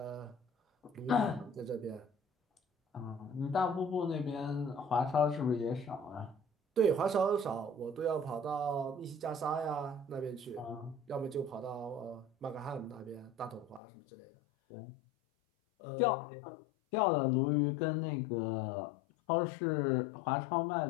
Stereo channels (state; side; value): drops out; right; at 13.8 s